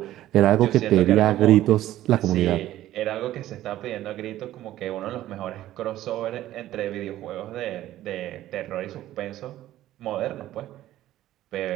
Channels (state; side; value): quieter; left; 14.0 dB